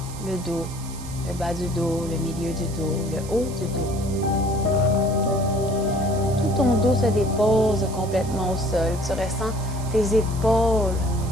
le dos, le bas du dos, le milieu du dos, le haut du dos. Tout ton dos se dépose complètement au sol. Tu ressens tes épaules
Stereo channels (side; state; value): right; noise; hiss, 16 dB below the sound